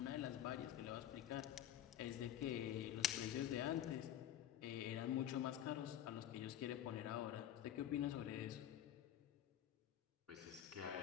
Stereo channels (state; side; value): quieter; right; 11.1 dB